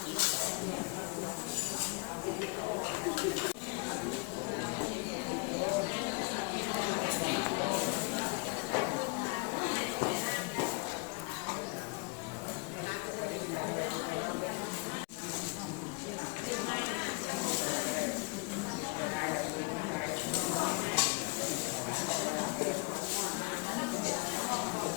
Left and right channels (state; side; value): quieter; right; 31.8 dB